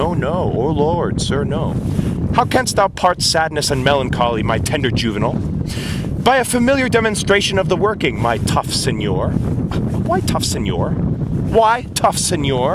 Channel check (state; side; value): identical; both; correlation 1.00